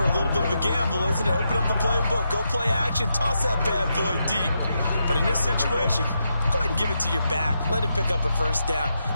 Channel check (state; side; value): inverted; both; correlation -0.84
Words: a little bit of a gamble, isn't it? Open up the playbook, go play action, toss that bad boy deep. But in this situation, go ahead and give it to your back. Let him pick up a first down.